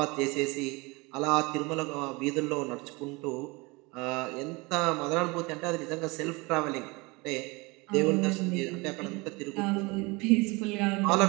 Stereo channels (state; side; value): quieter; left; 25.7 dB